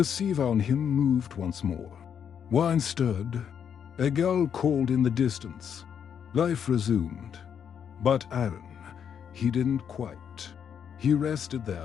sea around him moved once more. Wine stirred. A gull called in the distance. Life resumed. But Eiran, he didn't quite. He rested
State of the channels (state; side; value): quieter; right; 8.0 dB